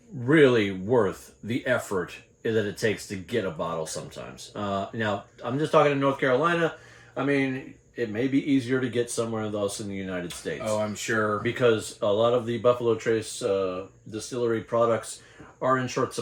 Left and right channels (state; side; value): identical; both; correlation 1.00